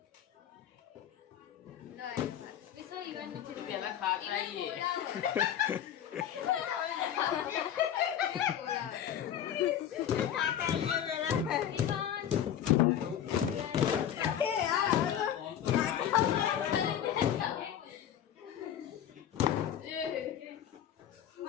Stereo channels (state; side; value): quieter; right; 10.0 dB